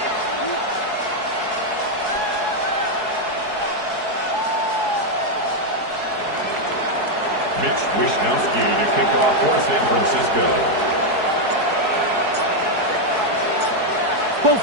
Mitch Wishnowsky to kick off for San Francisco. Both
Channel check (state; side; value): late; left; 4.7 ms